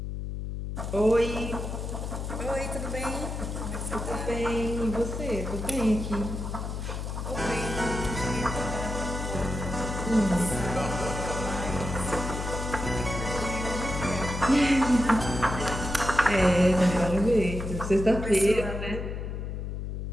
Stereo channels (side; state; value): left; noise; hum, 5 dB below the sound